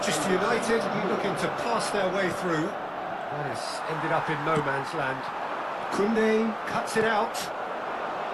United looking to pass their way through. That has ended up in no man's land. Koundé cuts it out.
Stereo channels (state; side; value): identical; both; correlation 1.00